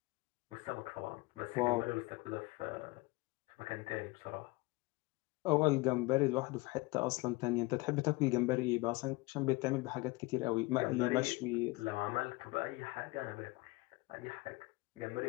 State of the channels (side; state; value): right; quieter; 23.2 dB